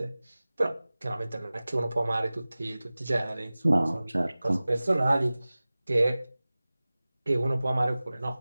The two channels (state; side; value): inverted; both; correlation -0.98